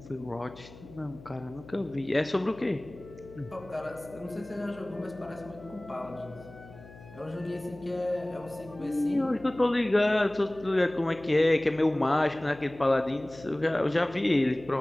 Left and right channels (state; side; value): noise; left; hum, 19 dB below the sound